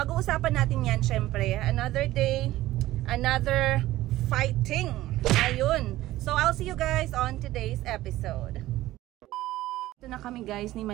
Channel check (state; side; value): quieter; left; 15.9 dB